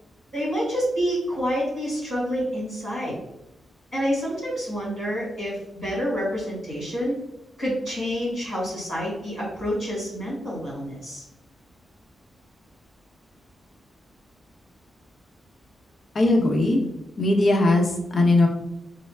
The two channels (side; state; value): both; normal; correlation 0.84